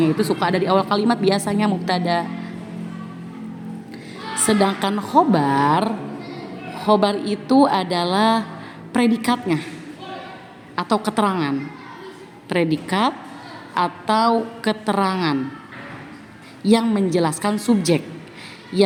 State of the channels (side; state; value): both; identical; correlation 1.00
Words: itu suka ada di awal kalimat biasanya mubtada. Sedangkan khobar itu adalah predikatnya atau keterangan. Predikat atau keterangan yang menjelaskan subjek